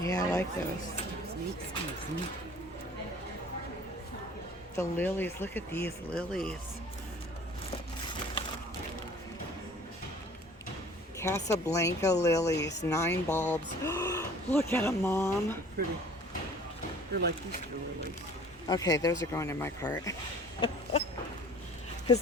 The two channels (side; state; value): both; normal; correlation 0.49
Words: Yeah, I like those. The lilies. Look at these lilies. Casablanca lilies. 9 bulbs. Look at them, Mom. Pretty. They're like Easter lilies. Okay, those are going in my cart. Because